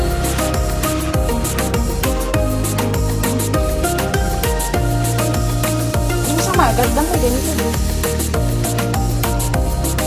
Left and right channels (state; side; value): identical; both; correlation 1.00